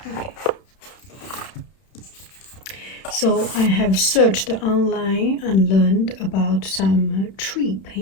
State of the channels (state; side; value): late; right; 31 ms